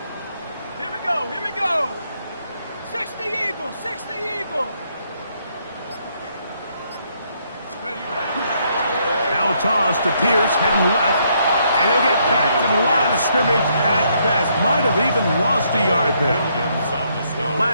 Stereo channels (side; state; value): both; inverted; correlation -0.72